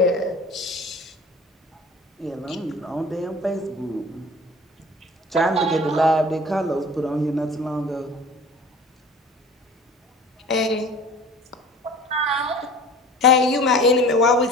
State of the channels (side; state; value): both; normal; correlation 0.43